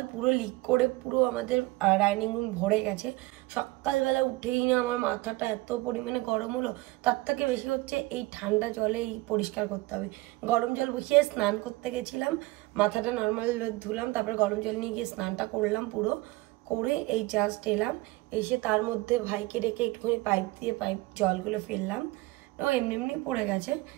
পুরো লিক করে পুরো আমাদের ডাইনিং রুম ভরে গেছে। সকালবেলা উঠেই না আমার মাথাটা এত পরিমাণে গরম হলো, তার থেকে বেশি হচ্ছে এই ঠান্ডা জলেই পরিষ্কার করতে হবে। গরম জল বসিয়ে স্নান করতে গেছিলাম, মাথাটা নর্মাল ধুলাম, তারপরে গরম জল নিয়ে গিয়ে স্নানটা করলাম পুরো করে এই জাস্ট এলাম। এসে তার মধ্যে ভাইকে রেখে একটুখানি পাইপ দিয়ে জলগুলো ফেললাম, ও এমনি এমনি পড়ে গেছে।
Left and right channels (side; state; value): left; quieter; 20.9 dB